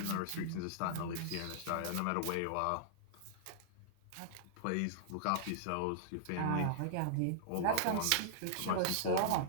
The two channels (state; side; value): different; both; correlation -0.01